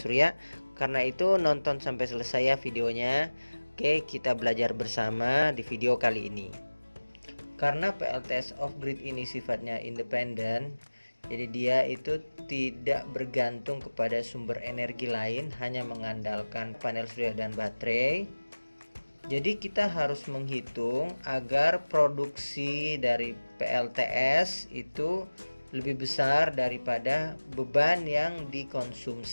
Karena itu nonton sampai selesai ya videonya. Oke, kita belajar bersama di video kali ini. Karena PLTS off-grid ini sifatnya independen, jadi dia itu tidak bergantung kepada sumber energi lain, hanya mengandalkan panel surya dan baterai. Jadi kita harus menghitung agar produksi dari PLTS itu lebih besar daripada beban yang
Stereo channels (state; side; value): inverted; both; correlation -1.00